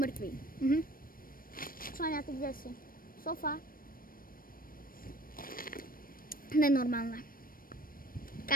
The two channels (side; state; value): right; late; 0.41 ms